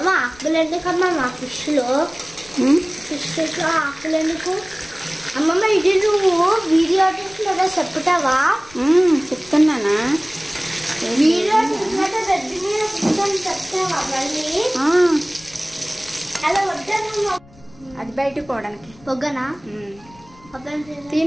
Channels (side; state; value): left; noise; rumble, 25 dB below the sound